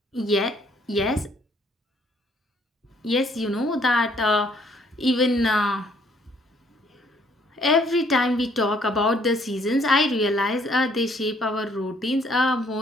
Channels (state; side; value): normal; both; correlation 0.64